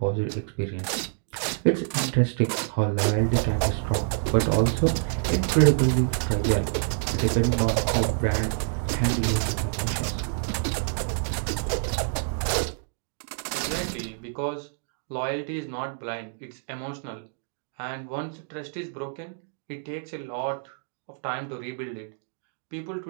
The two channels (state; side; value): silent; left; digital silence